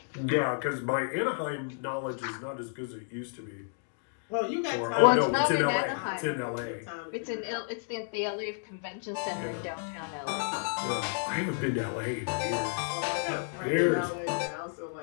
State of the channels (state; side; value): silent; right; digital silence